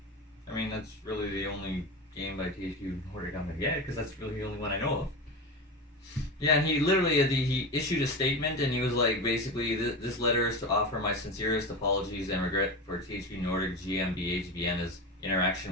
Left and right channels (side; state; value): both; normal; correlation 0.24